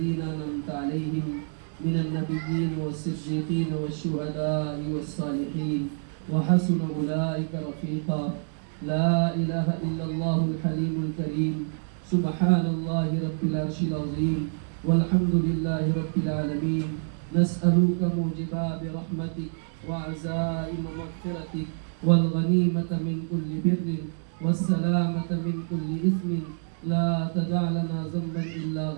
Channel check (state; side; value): silent; left; digital silence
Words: أنعمت عليهم من النبيين والصديقين والشهداء والصالحين وحسن أولئك رفيقا. لا إله إلا الله الحليم الكريم سبحان الله رب العرش العظيم والحمد لله رب العالمين. نسألك موجبات رحمتك وعزائم مغفرتك والغنيمة من كل بر والسلامة من كل إثم. لا تدع لنا ذنبا إلا